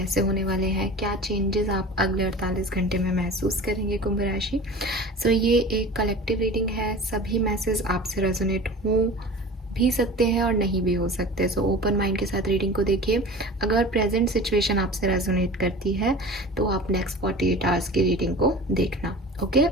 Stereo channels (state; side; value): normal; both; correlation 0.37